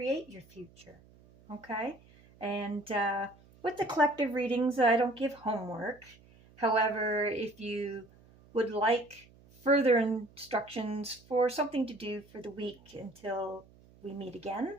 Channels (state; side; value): noise; right; hum, 26 dB below the sound